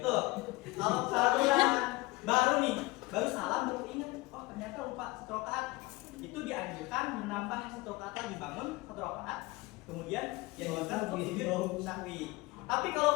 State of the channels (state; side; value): quieter; right; 22.0 dB